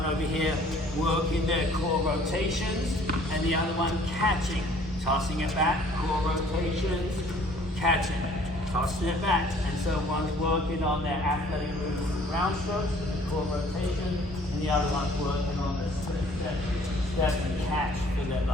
over here working their core rotations and the other one catching, tossing it back, core rotations, catching, tossing it back. And so one's working on their athletic moves, ground strokes, core rotation, and the other one's working on the step and catch for their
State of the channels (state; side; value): normal; both; correlation 0.56